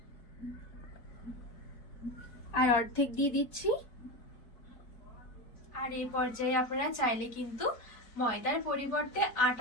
আর অর্ধেক দিয়ে দিচ্ছি। আর এই পর্যায়ে আপনারা চাইলে কিন্তু ময়দার পরিবর্তে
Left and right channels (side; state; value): right; late; 4.0 ms